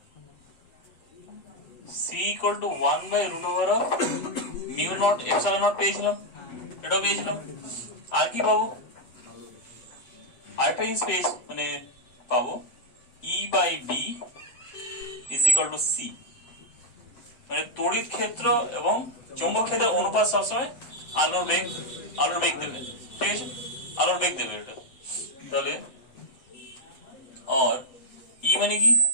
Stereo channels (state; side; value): late; right; 7.8 ms